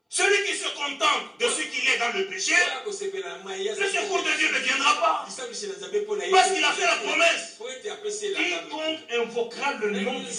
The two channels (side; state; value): both; identical; correlation 1.00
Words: Celui qui se contente de ce qu'il est dans le péché, le secours de Dieu ne viendra pas. Parce qu'il a fait la promesse. Quiconque invoquera le nom du